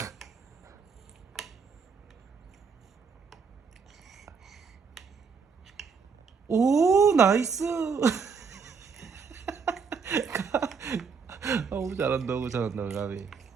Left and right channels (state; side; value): quieter; left; 5.6 dB